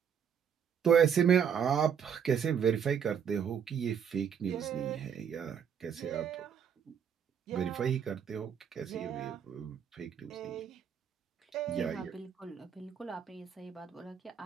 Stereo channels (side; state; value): left; quieter; 7.8 dB